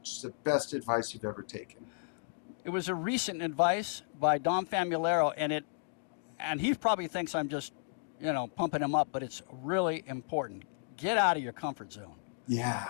Just the best advice you've ever taken. It was a recent advice by Dom Famularo, and he probably thinks I'm just, pumping him up, but it's really important. Get out of your comfort zone.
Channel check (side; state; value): right; silent; digital silence